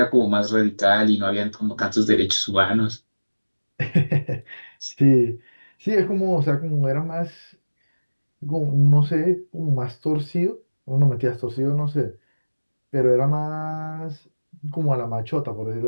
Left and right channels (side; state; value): both; inverted; correlation -1.00